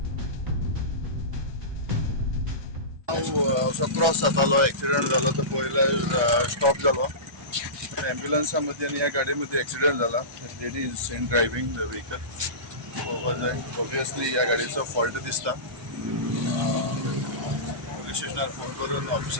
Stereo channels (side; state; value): left; late; 1.2 ms